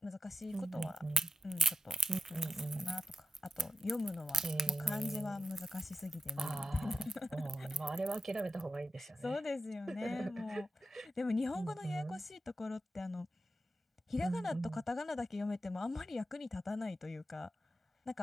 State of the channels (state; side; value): normal; both; correlation 0.92